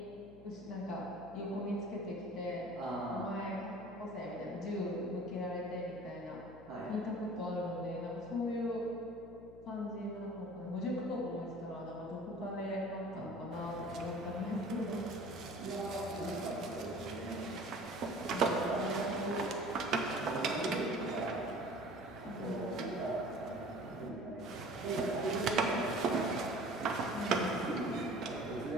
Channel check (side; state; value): left; noise; hum, 18 dB below the sound